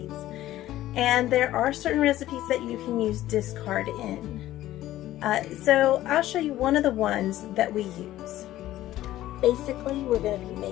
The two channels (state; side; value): quieter; right; 14.5 dB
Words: And there are certain recipes that you can use discard in. So I'll show you one of the ones that we use. Basically, we're going to be